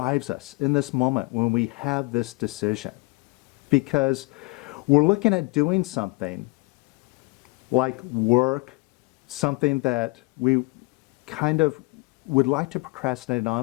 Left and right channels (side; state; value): right; quieter; 27.8 dB